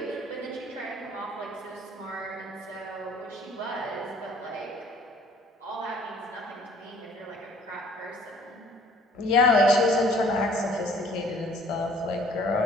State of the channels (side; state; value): both; normal; correlation 0.55